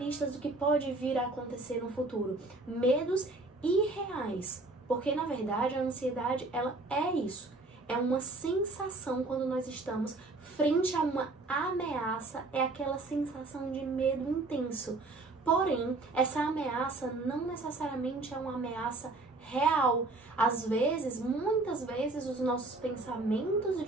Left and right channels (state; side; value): quieter; left; 3.2 dB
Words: do que pode vir a acontecer no futuro. Medos irreais. Porque, na verdade, a ansiedade, ela é isso. É uma sensação quando nós estamos frente a uma ameaça, é aquela sensação de medo intenso. Porém, essa ameaça não necessariamente é uma ameaça real. Às vezes, muitas vezes, os nossos pensamentos